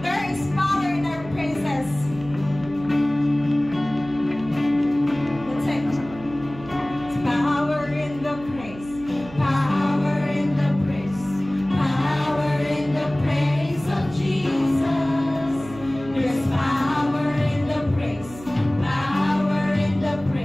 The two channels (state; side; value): noise; right; hum, 17 dB below the sound